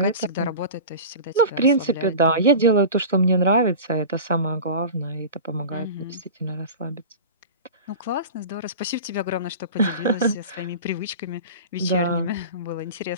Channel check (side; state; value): both; inverted; correlation -0.32